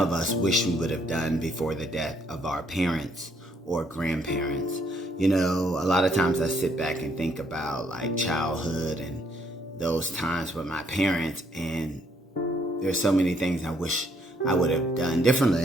us wish we would have done before the death of our parents or grandparents. You know, a lot of times I sit back and think about like childhood and those times with my parents, and there's so many things I wish I would have done differently.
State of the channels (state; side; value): normal; both; correlation 0.69